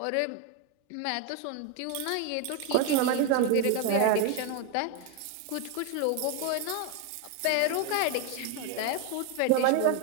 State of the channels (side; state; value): both; different; correlation 0.01